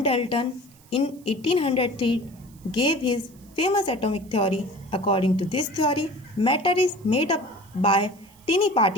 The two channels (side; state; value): right; noise; hiss, 28 dB below the sound